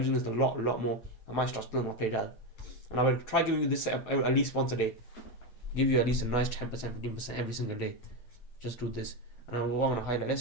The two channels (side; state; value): right; late; 8.4 ms